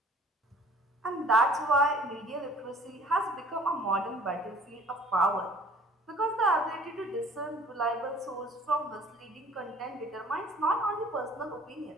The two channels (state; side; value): normal; both; correlation 0.52